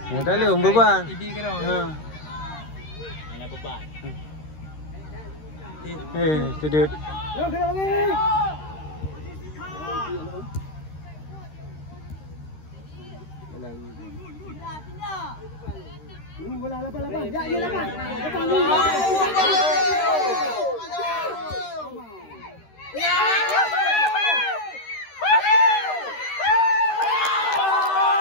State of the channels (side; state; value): right; late; 13 ms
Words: Ya tak boleh beban. Ibi kena. Mana beban? Sedut. Kena lagi. Bola lapan. Ya, lapan.